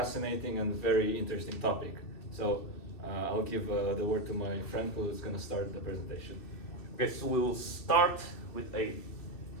and very interesting topic. So I'll give the word to my friend who is going to start the presentation. Okay, so we'll start with a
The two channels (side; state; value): right; late; 2.6 ms